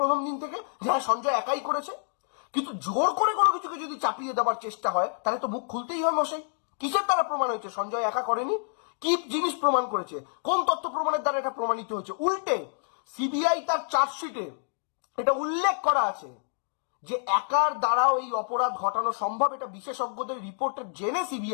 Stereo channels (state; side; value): silent; right; digital silence